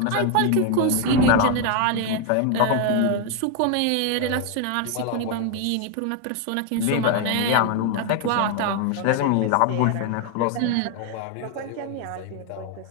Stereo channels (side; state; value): both; different; correlation 0.00